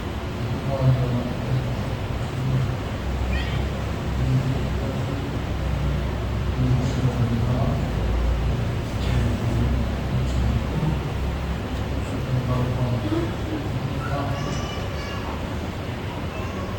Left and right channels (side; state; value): both; identical; correlation 1.00